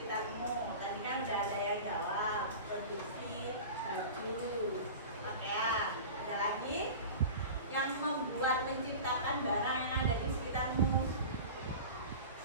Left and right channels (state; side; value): inverted; both; correlation -0.34